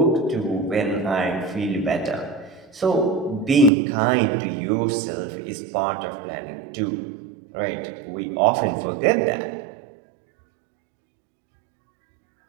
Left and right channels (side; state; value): left; drops out; at 3.7 s